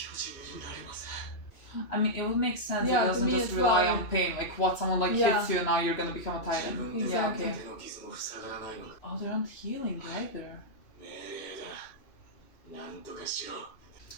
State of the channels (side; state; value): right; late; 3.0 ms